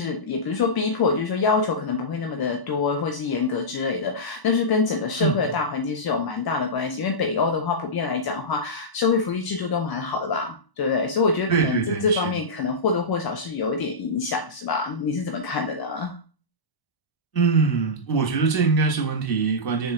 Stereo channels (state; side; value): late; right; 1.0 ms